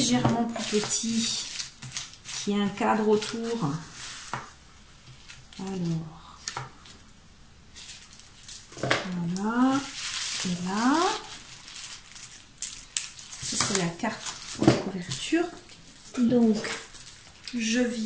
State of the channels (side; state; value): both; identical; correlation 1.00